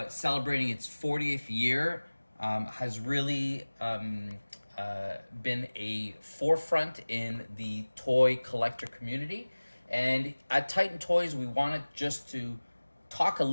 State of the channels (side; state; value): both; inverted; correlation -1.00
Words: celebrating its 40th year, has really been a forefront in the toy collector community. And at Titan Toys, we wanted just to talk a